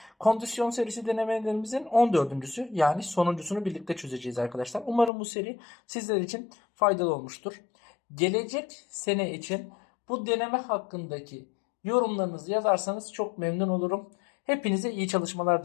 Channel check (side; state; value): right; drops out; at 5.1 s